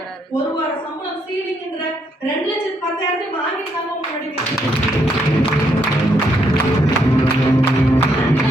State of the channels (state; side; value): normal; both; correlation 0.74